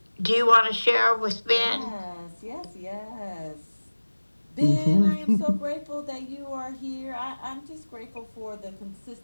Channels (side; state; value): both; inverted; correlation -1.00